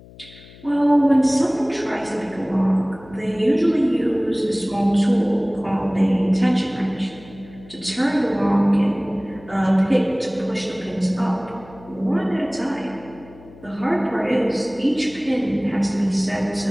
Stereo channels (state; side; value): noise; left; hum, 21 dB below the sound